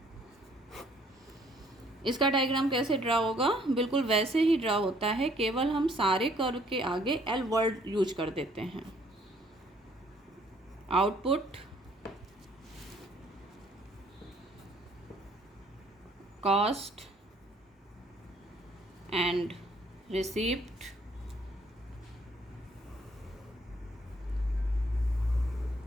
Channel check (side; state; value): both; normal; correlation 0.63